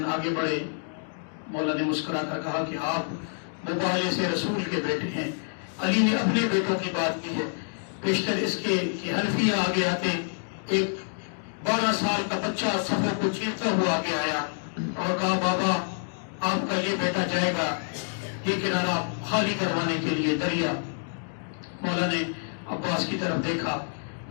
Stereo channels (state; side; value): silent; right; digital silence